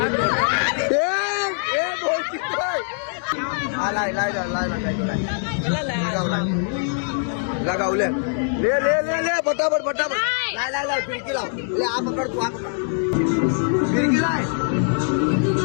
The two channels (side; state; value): right; silent; 64 dB below the other